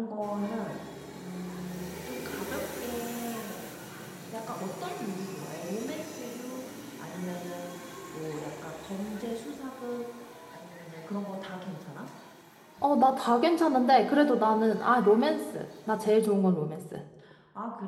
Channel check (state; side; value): identical; both; correlation 1.00